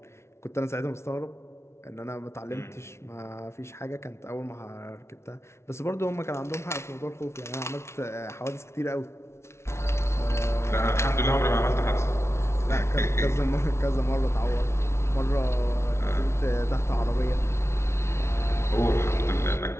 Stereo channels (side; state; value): right; late; 0.13 ms